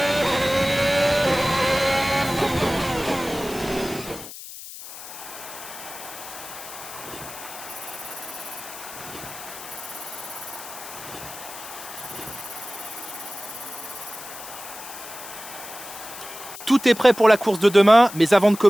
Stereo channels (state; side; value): noise; left; hiss, 12 dB below the sound